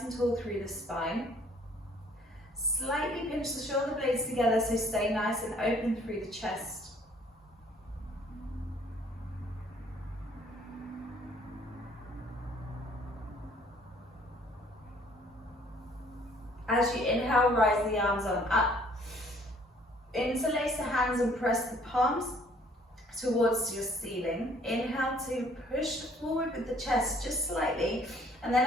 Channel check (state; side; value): normal; both; correlation 0.59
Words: and tall through the spine. Slightly pinch the shoulder blades together, so stay nice and open through the chest. As you inhale, rise the arms on up. Interlace the hands and press the palms towards your ceiling. Inhale to push forward with the chest just slightly, and then